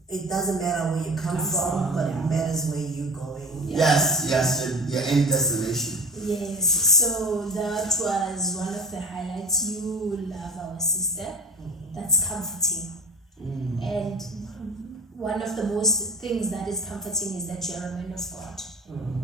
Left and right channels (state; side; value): normal; both; correlation 0.37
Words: it doesn't matter where you come from, but it matters where you're going. Yes, your end destination. Yes, so that was one of the highlights. You love our sister. That's comforting. And one of the most things that is comforting is that you're a man of God.